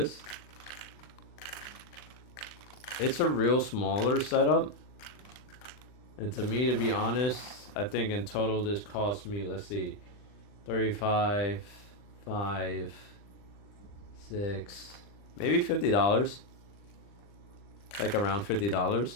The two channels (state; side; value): late; right; 39 ms